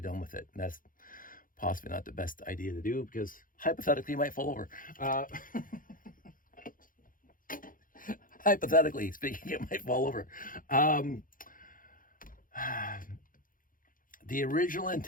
with it, and that's possibly not the best idea to do, because hypothetically you might fall over. Hypothetically speaking, it might fall over. The original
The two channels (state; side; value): late; right; 0.40 ms